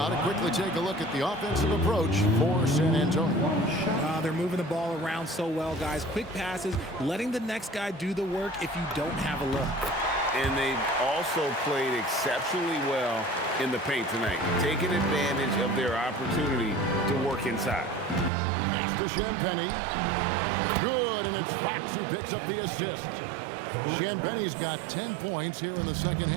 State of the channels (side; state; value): left; drops out; at 18.3 s